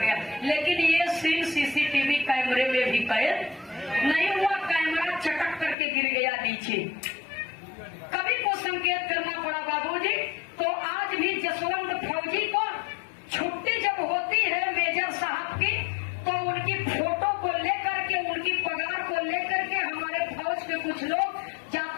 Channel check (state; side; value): drops out; right; at 5.8 s